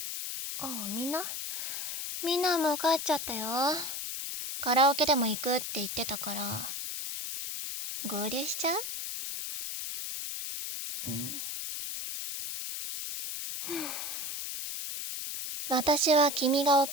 あ。みんなもう帰っちゃったよ。カラオケでも行くって言ってたから。合流しちゃう？私は君が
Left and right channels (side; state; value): left; noise; hiss, 5 dB below the sound